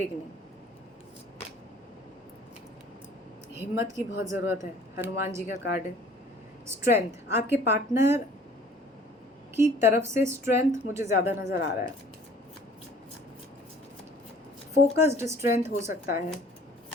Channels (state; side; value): normal; both; correlation 0.52